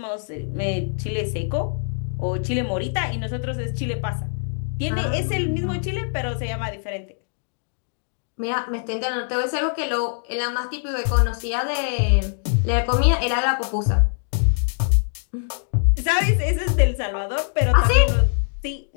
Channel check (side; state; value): right; silent; digital silence